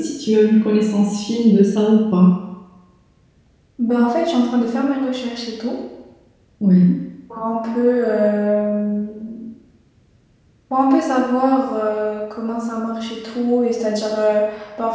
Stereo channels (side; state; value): both; identical; correlation 1.00